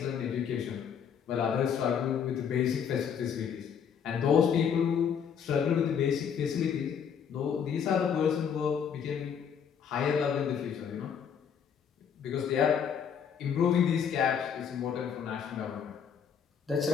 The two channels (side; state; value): right; quieter; 7.5 dB